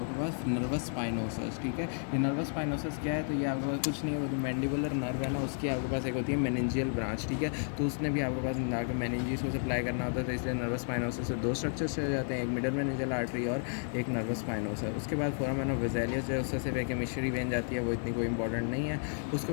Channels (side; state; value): right; silent; 56 dB below the other